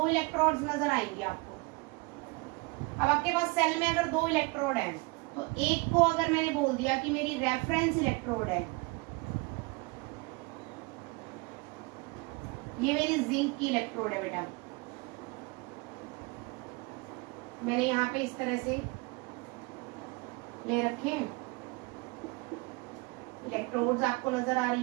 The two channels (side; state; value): left; quieter; 26.8 dB